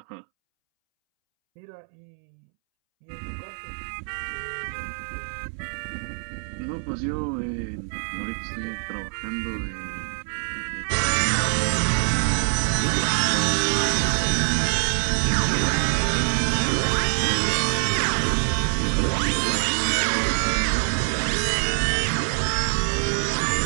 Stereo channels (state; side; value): silent; left; 62 dB below the other